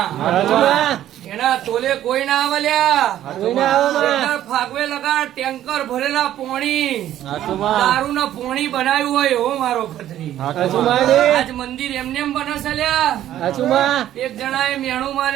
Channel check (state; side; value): quieter; left; 12.3 dB